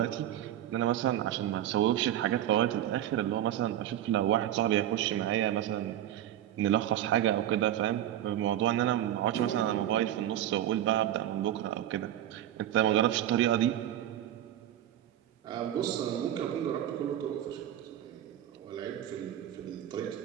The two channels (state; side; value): quieter; left; 12.0 dB